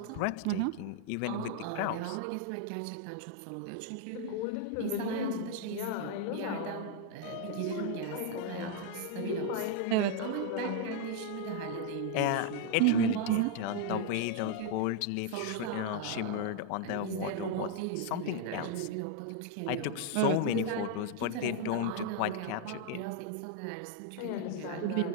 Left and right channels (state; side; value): different; both; correlation 0.00